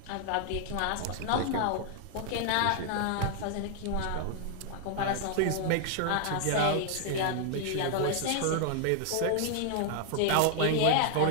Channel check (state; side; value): different; both; correlation 0.00